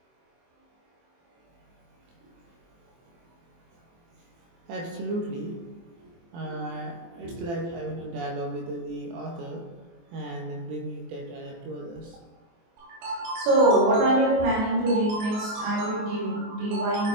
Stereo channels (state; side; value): late; left; 24 ms